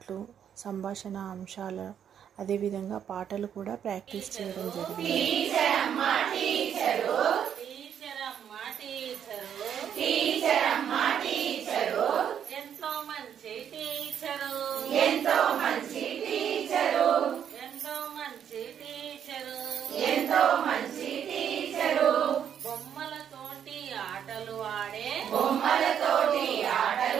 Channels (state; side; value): quieter; left; 8.8 dB